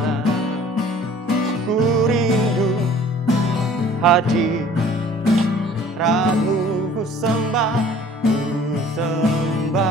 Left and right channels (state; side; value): normal; both; correlation 0.51